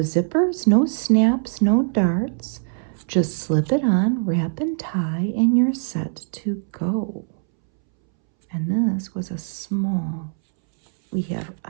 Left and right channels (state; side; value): silent; left; 64 dB below the other